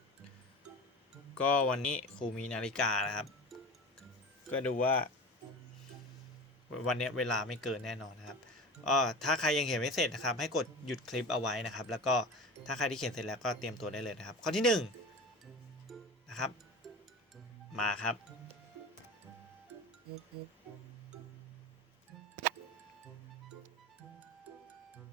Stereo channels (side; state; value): both; normal; correlation 0.33